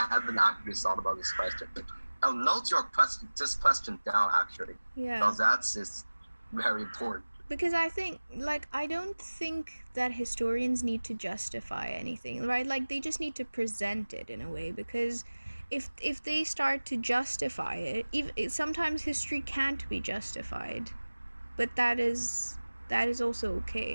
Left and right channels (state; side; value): inverted; both; correlation -1.00